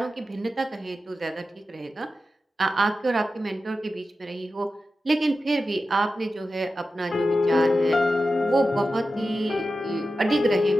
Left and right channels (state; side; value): normal; both; correlation 0.92